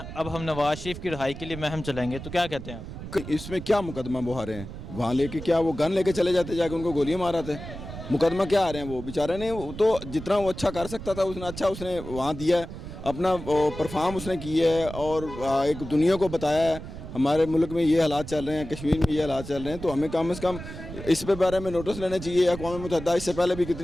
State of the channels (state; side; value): noise; right; rumble, 11 dB below the sound